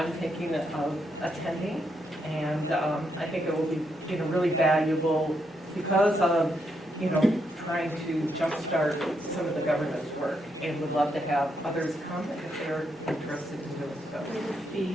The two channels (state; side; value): normal; both; correlation 0.79